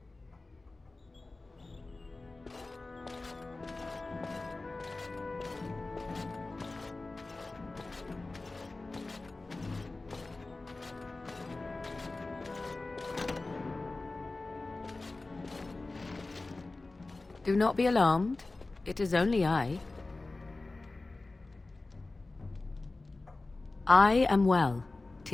Do not be alarmed. It is only I. I am well.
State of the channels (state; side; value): quieter; right; 3.3 dB